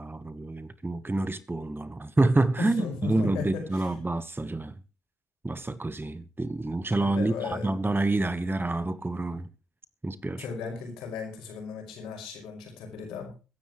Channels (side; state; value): both; normal; correlation 0.92